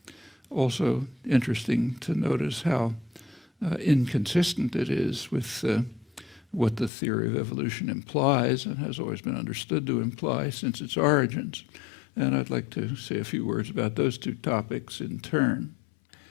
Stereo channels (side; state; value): right; drops out; at 6.9 s